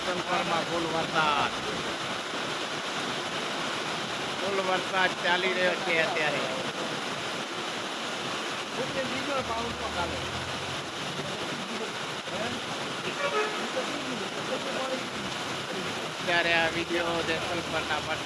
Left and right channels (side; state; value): both; identical; correlation 1.00